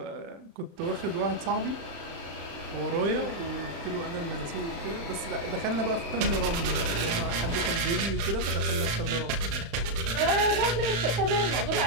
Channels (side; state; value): left; late; 35 ms